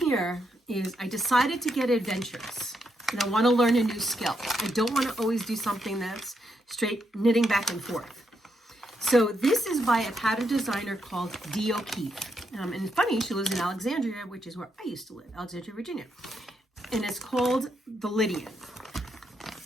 is I decided to get adventurous, and I want to learn a new skill. I don't want to always do something that's straight knitting back and forth. So this is by a pattern designer called Dee O'Keefe. And it's funny, she lives in Alexandria, which is where I used to live, Alexandria, Virginia. And it's called the Lydian.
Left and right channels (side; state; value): both; normal; correlation 0.80